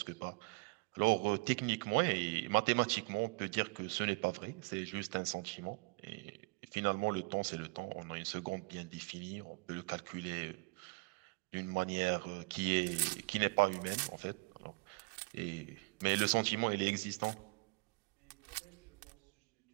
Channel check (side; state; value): left; quieter; 28.8 dB